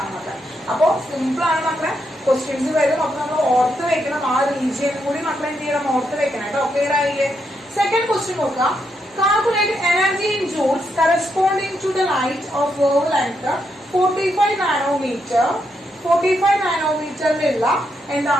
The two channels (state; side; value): normal; both; correlation 0.80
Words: മക്കളെ. അപ്പൊ സിമ്പിൾ ആണ് മക്കളെ. ക്വസ്റ്റ്യൻസ് വരും. അപ്പൊ നമ്മൾ ഓർത്ത് വെക്കണം. ആ റീജിയൻ കൂടി മക്കളെ എന്ത് ചെയ്യണം? ഓർത്ത് വെക്കണം കേട്ടോ. ക്ലിയർ ആയില്ലേ? സെക്കൻഡ് ക്വസ്റ്റ്യൻ നോക്കാം. Calculate energy in joules corresponding to the light of wavelength 45 nanometer. 45 നാനോമീറ്ററിലുള്ള